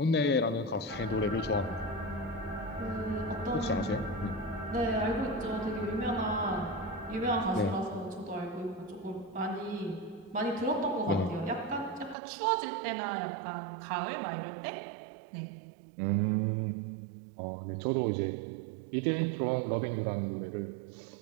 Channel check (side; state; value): left; drops out; at 12.2 s